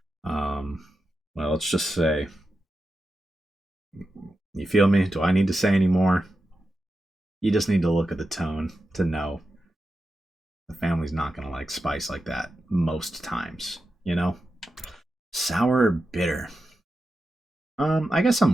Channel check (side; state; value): both; normal; correlation 0.90